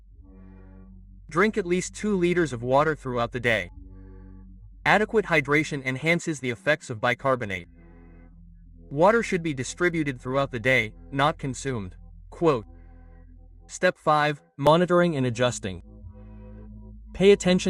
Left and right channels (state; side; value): identical; both; correlation 1.00